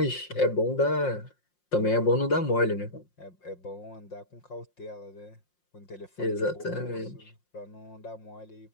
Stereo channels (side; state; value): right; late; 5.6 ms